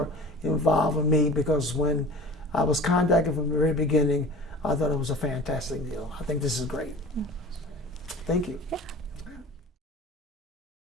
involving me, because when I was contacted from the very beginning, I thought it was a fantastic deal. I think this is great. Thank you. Yeah.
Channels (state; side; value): normal; both; correlation 0.40